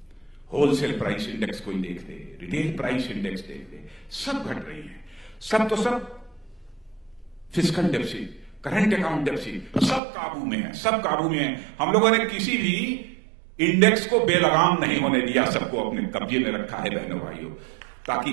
होलसेल प्राइस इंडेक्स कोई देख ले, रिटेल प्राइस इंडेक्स देख ले, सब घट रही है। सब तो सब fiscal deficit, current account deficit, सब काबू में है, सब काबू में है। हम लोगों ने किसी भी इंडेक्स को बेलगाम नहीं होने दिया, सबको अपने कब्जे में रखा है बहनों भाइयों।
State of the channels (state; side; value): drops out; left; at 10.0 s